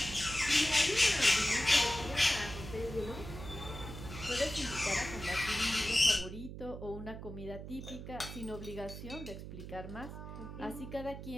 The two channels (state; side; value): noise; right; hum, 10 dB below the sound